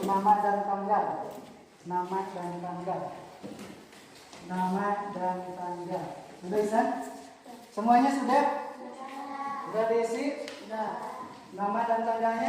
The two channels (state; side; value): identical; both; correlation 1.00